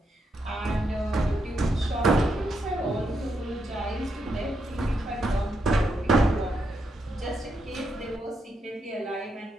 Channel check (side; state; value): both; normal; correlation 0.81